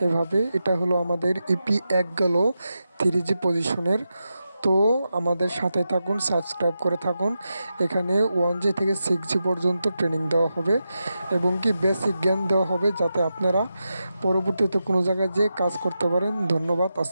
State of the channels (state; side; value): inverted; both; correlation -0.89